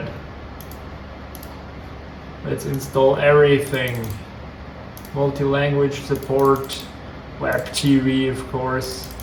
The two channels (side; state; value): both; identical; correlation 1.00